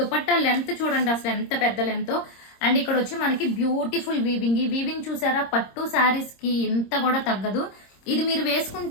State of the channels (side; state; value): right; late; 26 ms